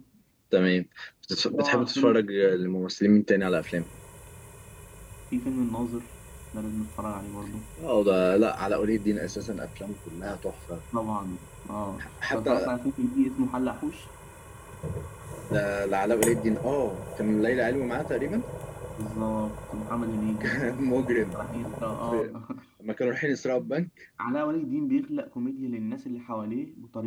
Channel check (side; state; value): both; identical; correlation 1.00